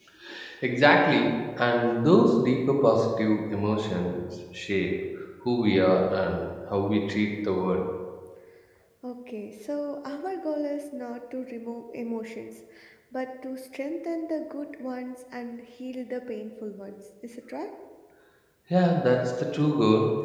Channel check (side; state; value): both; identical; correlation 1.00